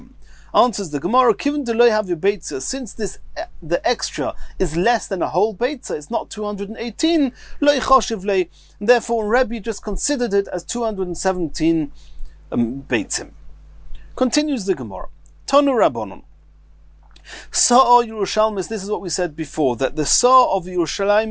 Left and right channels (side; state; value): both; identical; correlation 1.00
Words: Answers the Gemara, Kiven deloy have your beitza, since the extra is less than a whole beitza, it's not 218, loy choshev lei, therefore Rebbe just considered it as 217 beitzim. Continues the Gemara. Tonu Rabbanon. Sa'a Yerushalmis, this is what we said before, that the Sa'a of